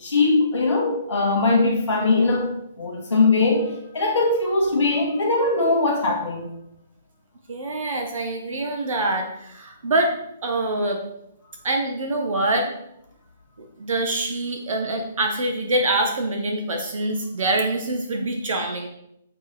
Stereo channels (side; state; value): both; inverted; correlation -0.55